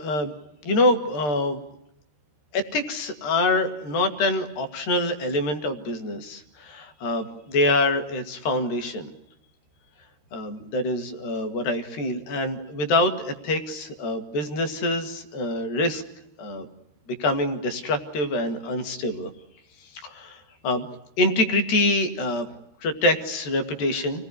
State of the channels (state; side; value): late; right; 13 ms